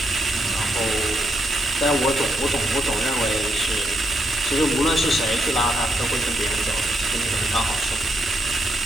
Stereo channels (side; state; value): both; normal; correlation 0.78